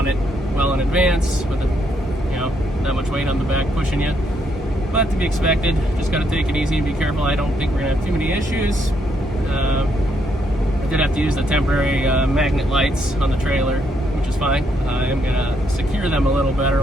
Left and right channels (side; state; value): both; normal; correlation 0.75